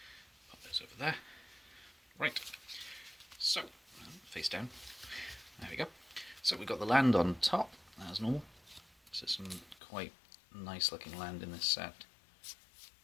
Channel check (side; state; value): right; drops out; at 9.8 s